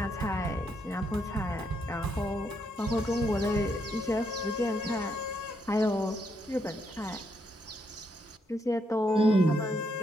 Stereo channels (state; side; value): normal; both; correlation 0.77